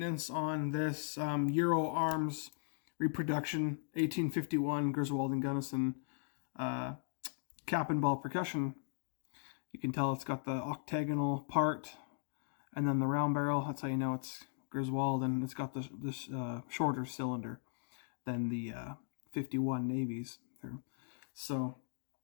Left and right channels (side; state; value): right; silent; digital silence